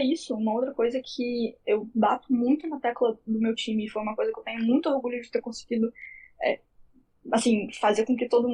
isso, uma outra coisa que eu bato muito na tecla do meu time, e foi uma coisa que eu tenho muito orgulho de ter conseguido assim, fazer com que todo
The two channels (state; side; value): identical; both; correlation 1.00